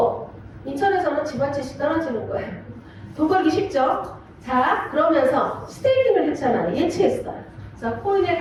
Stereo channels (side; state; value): both; identical; correlation 1.00